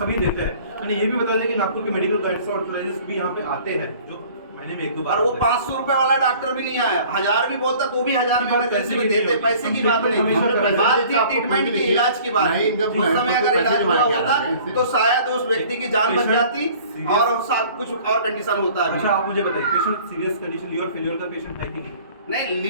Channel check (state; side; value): inverted; both; correlation -0.50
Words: देते हैं, मैंने ये भी बता दिया कि नागपुर के मेडिकल गाइड्स भी यहाँ पे आते हैं, जो महीने में 1-2 बार। और वो 500 रुपए वाला डॉक्टर भी नहीं आया, 1000 भी बोलता तो भी 1000 में इमरजेंसी में देते। पैसे की बात नहीं, बात थी ट्रीटमेंट की, इलाज की बात। उस समय अगर इलाज हुआ होता तो शायद उस व्यक्ति की जान बच जाती और साथ कुछ और कंडीशन होता है। अच्छा, आप मुझे बताइए, patient serious condition liver failure का पेशेंट है कि नहीं? नहीं,